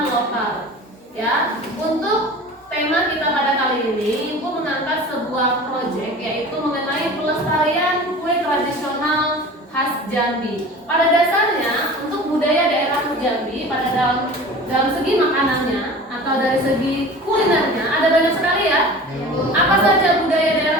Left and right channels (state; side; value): normal; both; correlation 0.39